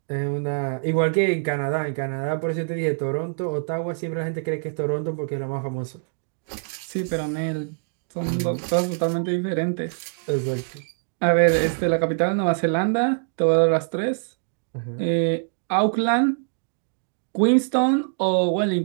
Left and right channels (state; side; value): silent; left; digital silence